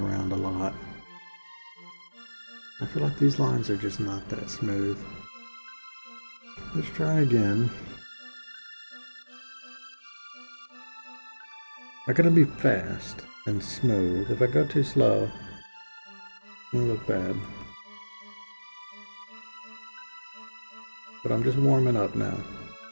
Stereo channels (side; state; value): both; inverted; correlation -1.00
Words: a lot. I feel like these lines are just not that smooth. Let's try again. I'm gonna be fast and smooth. If I go too slow, it'll look bad. But I'm just warming up now.